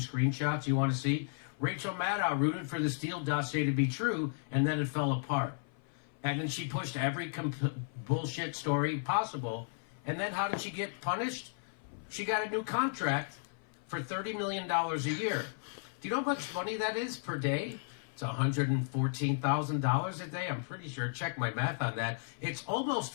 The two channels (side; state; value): right; silent; 55 dB below the other